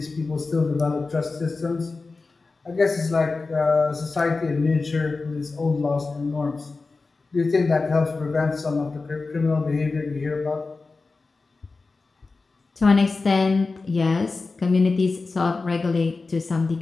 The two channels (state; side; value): quieter; right; 3.9 dB